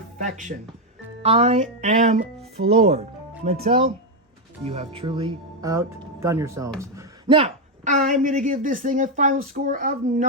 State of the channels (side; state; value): both; normal; correlation 0.04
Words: I am floored. Mattel, you have truly outdone yourselves. Now, I'm going to give this thing a final score of